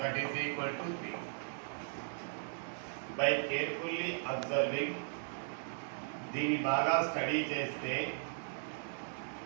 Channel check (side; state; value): left; silent; 53 dB below the other